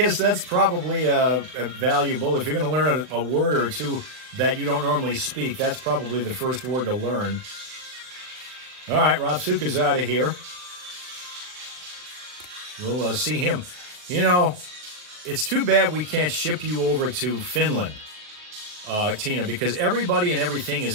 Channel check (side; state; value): left; late; 39 ms